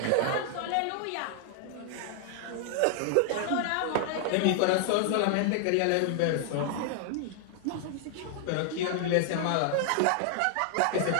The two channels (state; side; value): different; both; correlation 0.00